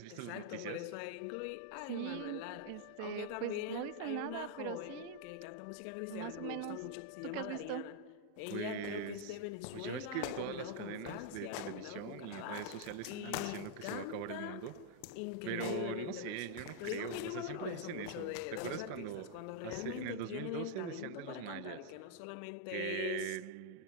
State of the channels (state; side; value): different; both; correlation -0.01